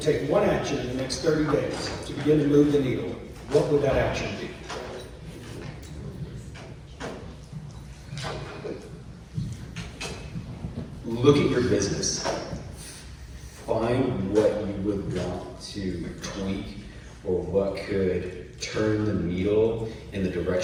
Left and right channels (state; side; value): identical; both; correlation 1.00